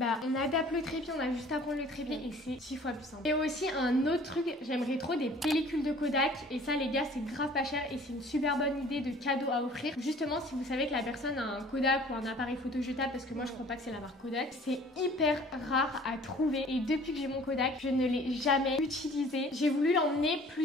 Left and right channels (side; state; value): both; normal; correlation 0.50